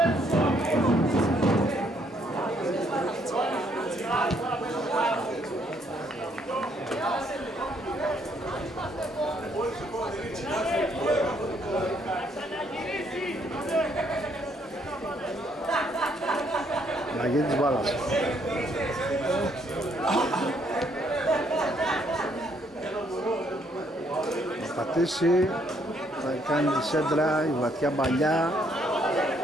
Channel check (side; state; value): both; normal; correlation 0.69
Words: Αλλαγή της μπάλας. Θα πατήσει, θα κάνει τη σέντρα, η βαθιά μπαλιά.